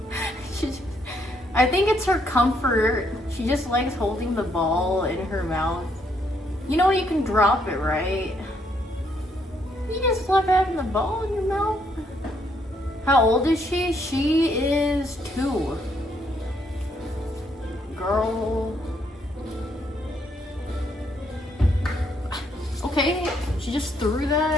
I think it's her comfort. She just likes holding the ball in her mouth. You know you can drop it, right? You just love having the ball in your mouth. How old is she? She is 2. Girl. Okay, she just threw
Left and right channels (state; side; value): normal; both; correlation 0.72